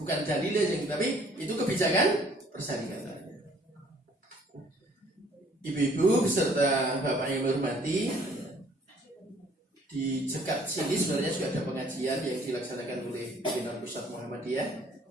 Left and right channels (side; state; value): both; normal; correlation 0.59